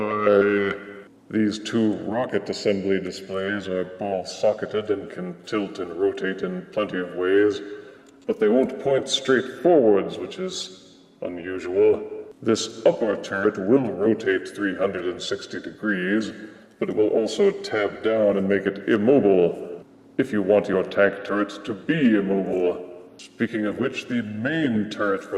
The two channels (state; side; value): identical; both; correlation 1.00